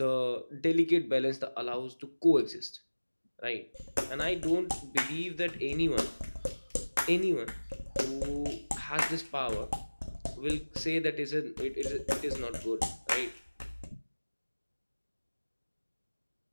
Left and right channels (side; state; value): both; inverted; correlation -1.00